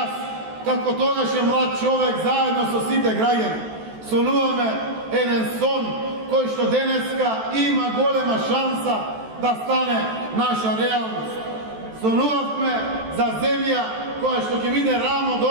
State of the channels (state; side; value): late; left; 14 ms